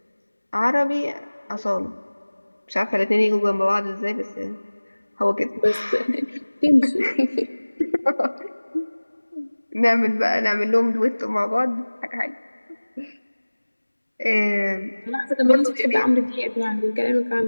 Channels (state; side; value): inverted; both; correlation -1.00